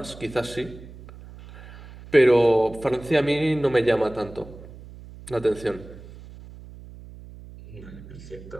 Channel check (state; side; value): noise; right; hum, 17 dB below the sound